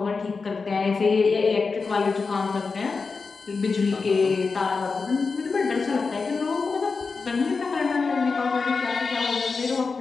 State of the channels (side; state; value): right; quieter; 4.6 dB